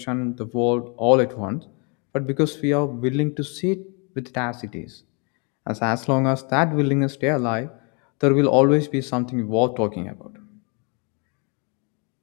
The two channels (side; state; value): right; quieter; 34.2 dB